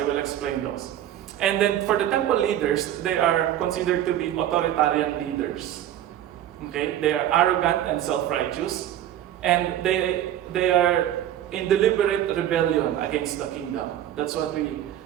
will explain those. And then for the temple leaders, they are considered to be authoritarian leaders. They are arrogant and self-righteous, and they are in deliberate rebellion against the kingdom. That's what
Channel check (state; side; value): quieter; left; 11.7 dB